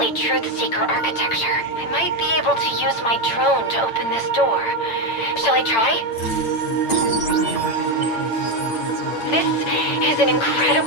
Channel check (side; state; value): right; late; 8.8 ms